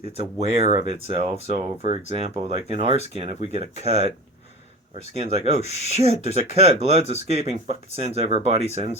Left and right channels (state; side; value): normal; both; correlation 0.32